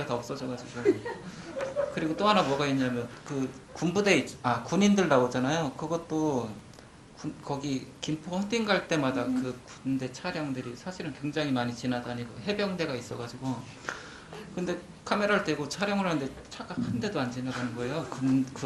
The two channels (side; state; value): both; identical; correlation 1.00